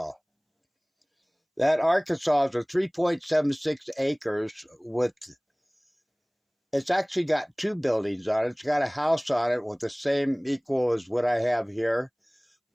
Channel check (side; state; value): both; identical; correlation 1.00